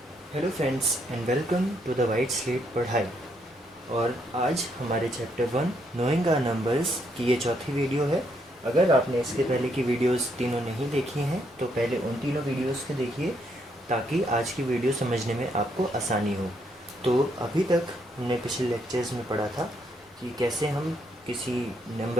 friends and welcome to the white slate पढ़ाई। और आज हमारे चैप्टर 1 नोइंग आवर नंबर्स की ये चौथी वीडियो है। अगर आपने इसके पहले की वीडियोस तीनों नहीं देखी हैं तो पहले उन तीनों वीडियोस को देखिए ताकि आज की वीडियो समझने में आपको आसानी हो। तो अभी तक हमने पिछले लेक्चर्स में पढ़ा था कि कैसे हम किसी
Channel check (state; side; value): normal; both; correlation 0.74